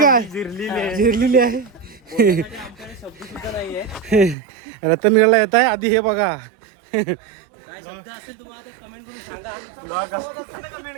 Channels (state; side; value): drops out; left; at 4.4 s